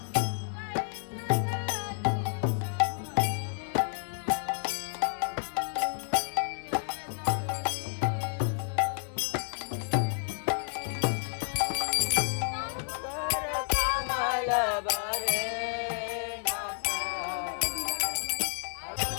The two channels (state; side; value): silent; right; 57 dB below the other